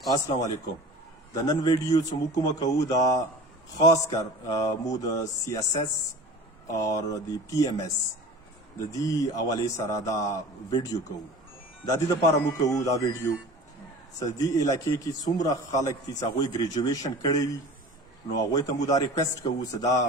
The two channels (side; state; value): both; normal; correlation 0.39